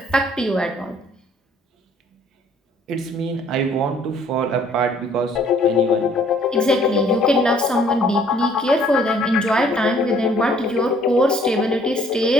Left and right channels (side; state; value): both; normal; correlation 0.60